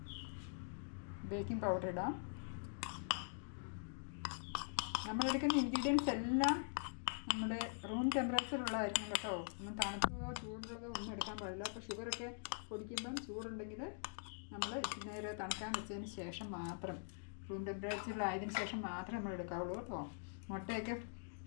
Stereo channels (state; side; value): silent; right; digital silence